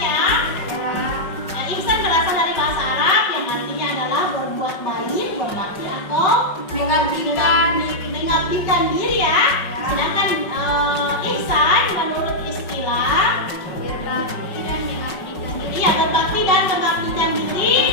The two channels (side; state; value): right; late; 5.4 ms